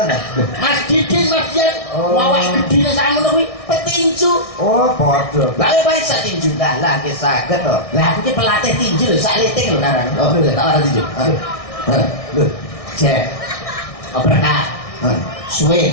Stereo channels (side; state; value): right; late; 1.6 ms